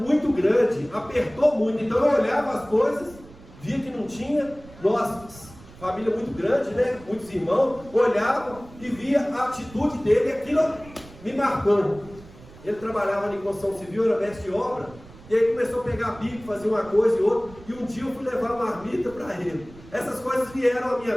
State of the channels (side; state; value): right; noise; rumble, 20 dB below the sound